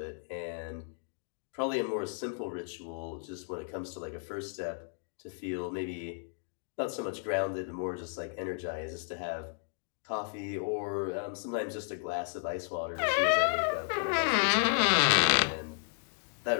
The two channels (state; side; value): silent; right; 56 dB below the other